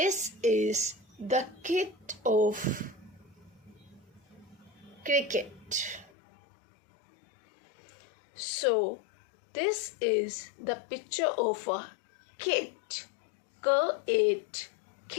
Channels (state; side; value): drops out; right; at 6.1 s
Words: is the kit of cricket. So this is the picture of a kit. K-it,